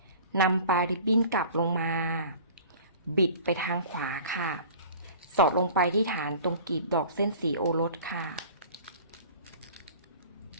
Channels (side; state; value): both; inverted; correlation -0.44